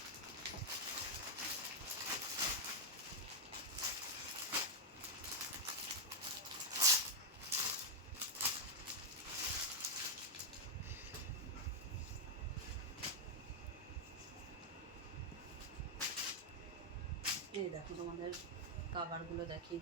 এই দেখো, তোমাদের কাভারগুলো দেখিয়ে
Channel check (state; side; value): normal; both; correlation -0.01